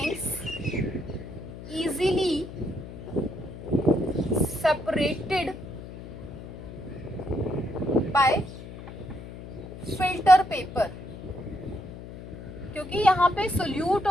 easily separated by filter paper। क्योंकि यहाँ पे सोल्यूट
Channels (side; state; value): left; noise; hum, 13 dB below the sound